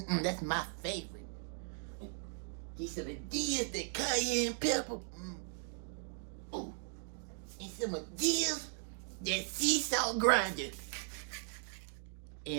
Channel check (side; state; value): left; silent; 52 dB below the other